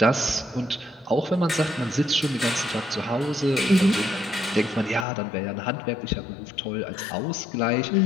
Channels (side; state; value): right; drops out; at 5.1 s